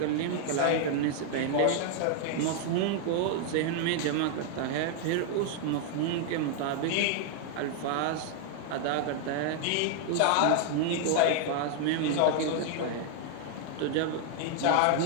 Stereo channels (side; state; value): both; different; correlation 0.00